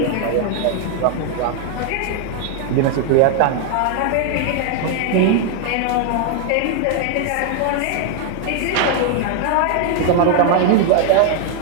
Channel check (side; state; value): both; different; correlation 0.00